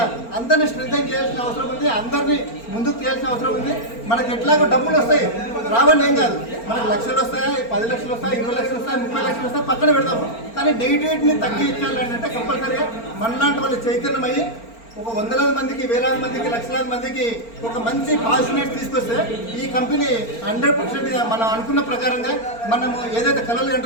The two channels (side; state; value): right; late; 4.4 ms